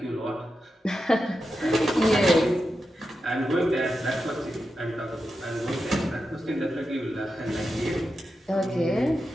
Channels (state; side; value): normal; both; correlation 0.89